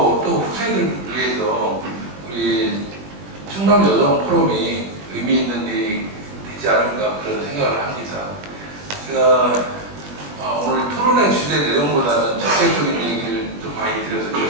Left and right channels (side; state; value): left; late; 20 ms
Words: 또 후세들을 위해서 우리 충남 여성 포럼이 의미 있는 일이 되지 않을까 그런 생각을 합니다. 제가 오늘 토론의 주제 내용보다는 적극적인 얘기를 좀 많이 드려서